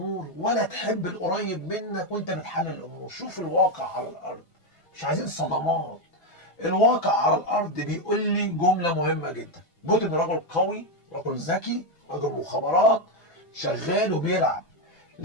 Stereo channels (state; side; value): late; right; 6.1 ms